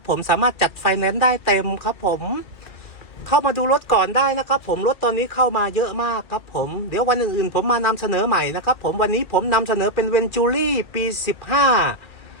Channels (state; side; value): late; right; 2.4 ms